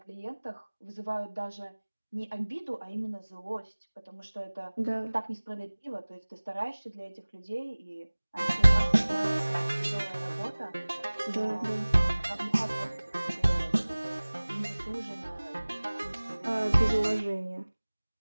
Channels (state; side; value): inverted; both; correlation -1.00